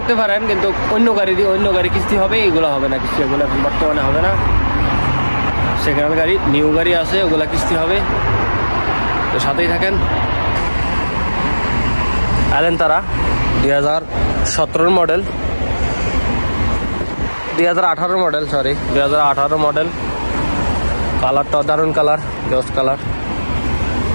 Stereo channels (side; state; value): both; inverted; correlation -1.00